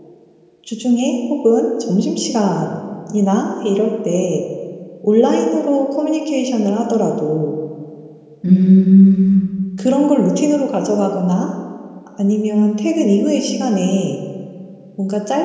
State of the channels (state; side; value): identical; both; correlation 1.00